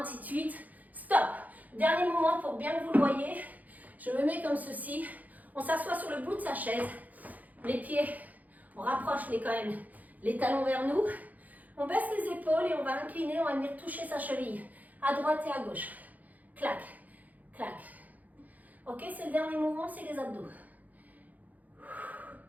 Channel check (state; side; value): late; left; 0.079 ms